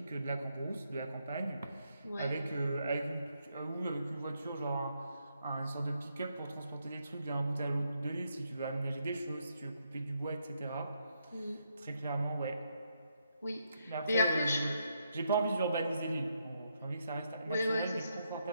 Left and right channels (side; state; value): both; inverted; correlation -0.78